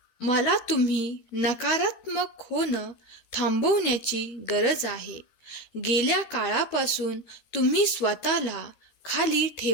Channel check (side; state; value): right; late; 13 ms